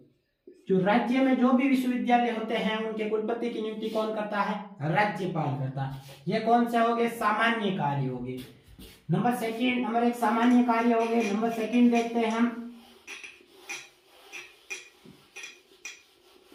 जो राज्य में जो भी विश्वविद्यालय होते हैं उनके कुलपति की नियुक्ति कौन करता है? राज्यपाल करता है। ये कौन से हो गए? सामान्य कार्य हो गए। नंबर 1 सामान्य कार्य हो गए। नंबर 2 देखते हैं हम।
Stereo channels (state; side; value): identical; both; correlation 1.00